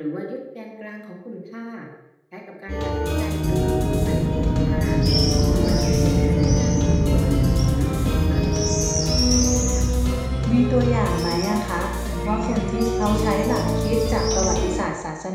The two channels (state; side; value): identical; both; correlation 1.00